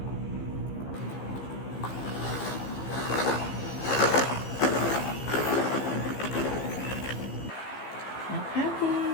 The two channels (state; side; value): late; right; 15 ms